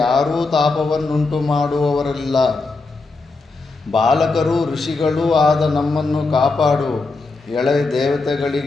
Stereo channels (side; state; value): right; quieter; 3.7 dB